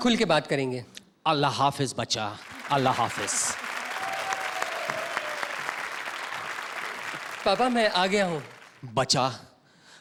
के बात करेंगे। अल्लाह हाफिज बच्चा, अल्लाह हाफिज। पापा मैं आ गया हूँ। बच्चा,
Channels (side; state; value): both; identical; correlation 1.00